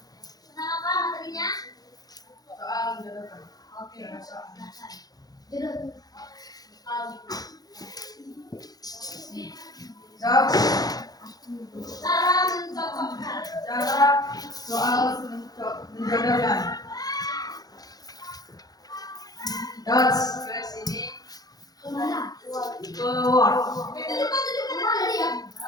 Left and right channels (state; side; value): late; right; 0.19 ms